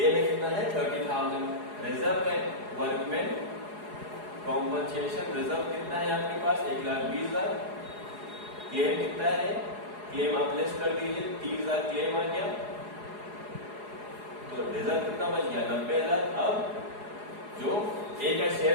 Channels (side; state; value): left; late; 4.8 ms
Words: में कितना है? 30,000। रिजर्व है वर्कमैन कॉम्पनसेशन रिजर्व कितना है आपके पास? 1,20,000। क्लेम कितना है? क्लेम आप लेस कर दीजिए, 30,000 क्लेम आ गया, तो रिजर्व कितना बच गया? 90,000। अब जो ए का